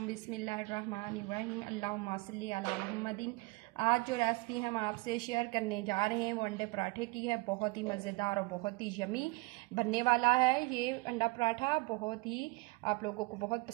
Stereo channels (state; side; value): quieter; left; 24.2 dB